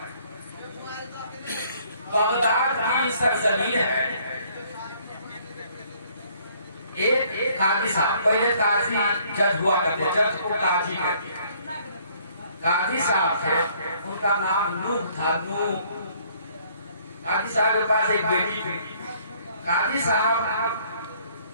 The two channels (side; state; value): both; inverted; correlation -0.62